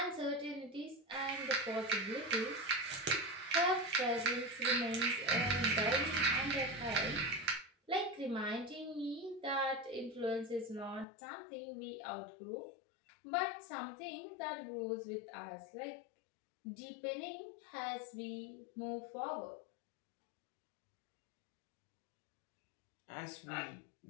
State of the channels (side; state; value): right; drops out; at 11.1 s